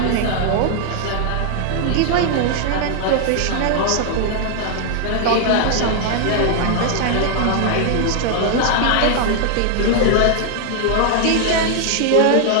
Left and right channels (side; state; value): both; different; correlation 0.00